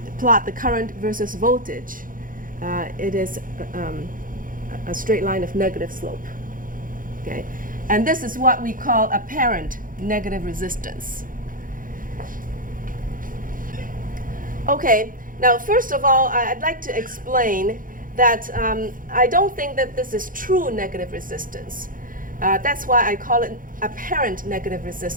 plot the current versus voltage. It is a straight line of negative slope. Okay? And this is what we call apparent negative resistance. Okay, now first of all, I'd like to explain that I don't think that this is true negative resistance. That's why I call it apparent negative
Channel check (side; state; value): left; late; 0.40 ms